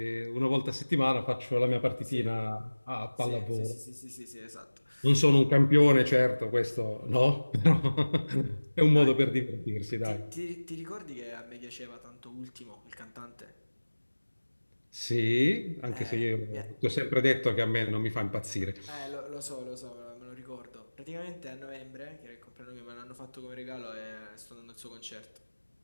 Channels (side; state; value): both; inverted; correlation -1.00